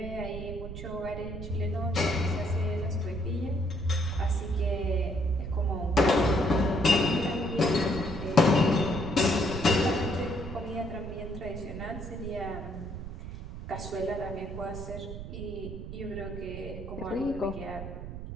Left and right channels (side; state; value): right; noise; rumble, 9 dB below the sound